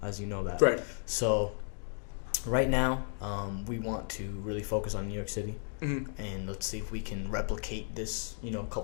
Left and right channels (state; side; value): silent; right; 55 dB below the other